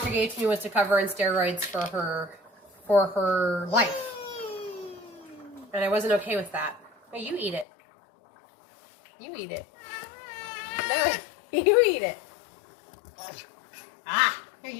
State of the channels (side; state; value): right; drops out; at 7.7 s